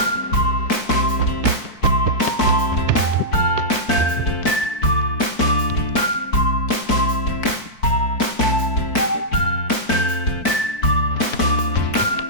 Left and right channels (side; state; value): right; late; 4.5 ms